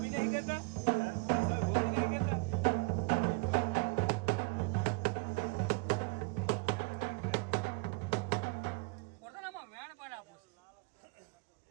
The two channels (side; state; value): left; quieter; 27.7 dB